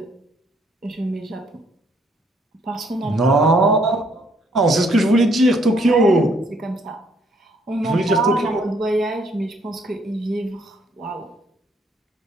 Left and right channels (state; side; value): normal; both; correlation 0.67